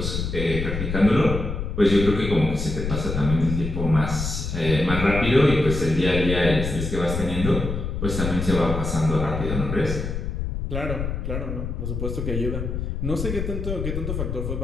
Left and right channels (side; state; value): left; noise; rumble, 3 dB below the sound